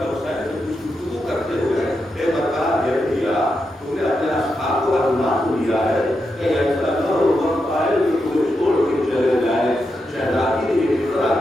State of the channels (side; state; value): both; normal; correlation 0.86